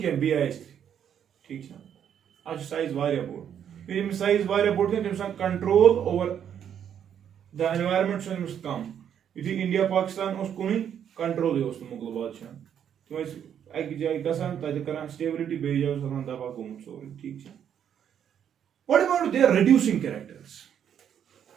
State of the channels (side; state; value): left; quieter; 8.9 dB